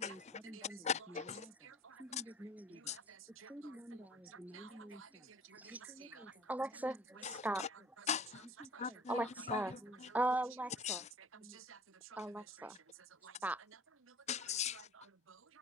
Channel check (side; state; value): both; normal; correlation 0.46